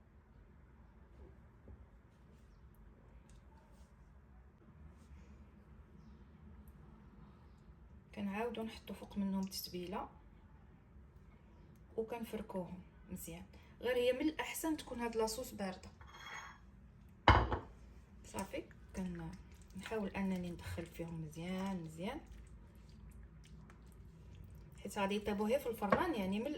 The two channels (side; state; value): both; identical; correlation 1.00